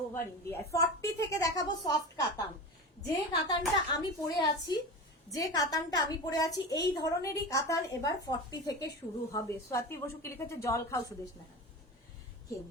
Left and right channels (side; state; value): both; normal; correlation 0.28